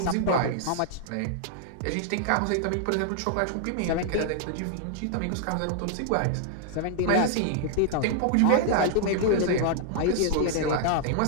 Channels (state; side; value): different; both; correlation -0.01